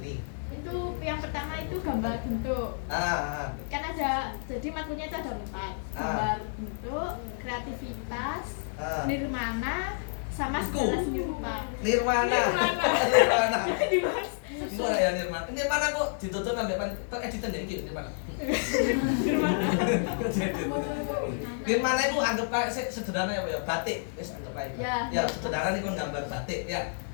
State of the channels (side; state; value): right; silent; 58 dB below the other